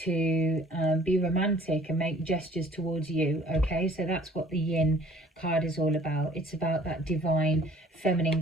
to be romantic and make gestures towards you, okay? So that's what the Yin card is all about. It's about that divine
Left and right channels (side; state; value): both; normal; correlation 0.54